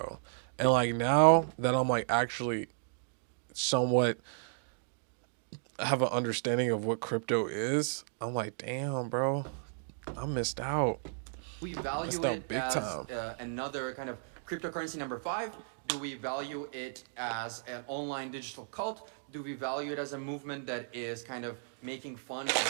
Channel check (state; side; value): silent; left; digital silence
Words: And like now that I'm like actually somewhat have an understanding of what crypto is, I'm like, damn, bro, I missed out. We value Missed out it big as time. another kind of cryptocurrency number 5? Do we value it as an online digital cult? Do we value it as a movement that is kind of making fun of